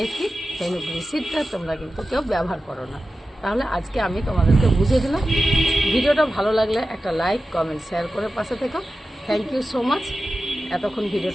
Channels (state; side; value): normal; both; correlation 0.93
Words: ফেনুগ্রিক তোমরা কিন্তু কেউ ব্যবহার করো না। তাহলে আজকে আমি তোমাদেরকে বুঝিয়ে দিলাম। ভিডিওটা ভালো লাগলে একটা লাইক, কমেন্ট, শেয়ার করে পাশে থেকো। থ্যাংক ইউ সো মাচ এতক্ষণ